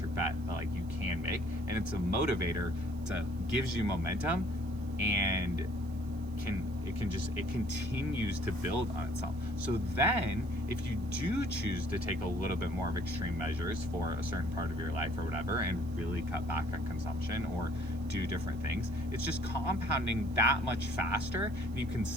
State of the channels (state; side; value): noise; right; hiss, 28 dB below the sound